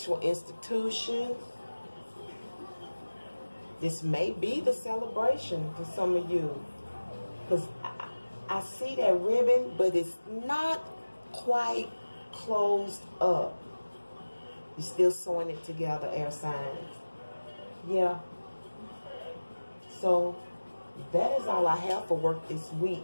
institution. This may be the celebration for some of you. Because I see that ribbon, but it's not quite closed up. You're still sewing it together, air signs. Yeah. So, that is all I have for work this week.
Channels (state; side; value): inverted; both; correlation -1.00